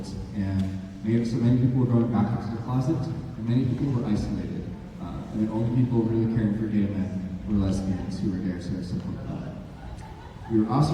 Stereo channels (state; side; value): identical; both; correlation 1.00